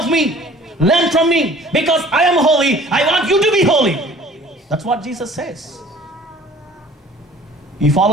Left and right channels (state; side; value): normal; both; correlation 0.50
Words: me, learn from me, because I am holy. I want you to be holy. That's what Jesus says. You